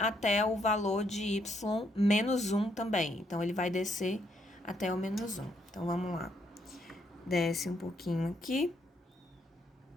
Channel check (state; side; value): normal; both; correlation 0.73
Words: o valor de y menos 1 também. Então, ele vai descer até o menos 1. Então, vamos lá. Desce um pouquinho aqui.